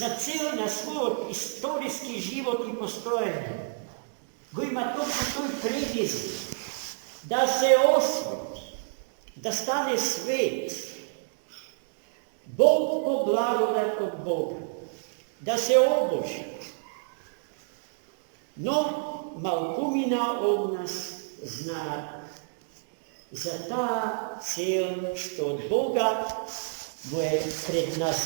цел на својот историски живот и постоење, го има токму тој предизвик да се освети, да стане свет, Бог по благодат од Бога, да се обожи. Но малкумина од нас знаат за таа цел што од Бога му е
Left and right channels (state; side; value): silent; left; digital silence